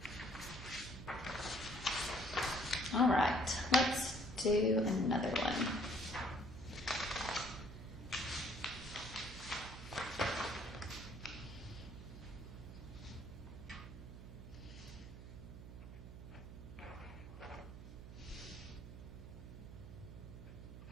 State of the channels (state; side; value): noise; right; hum, 11 dB below the sound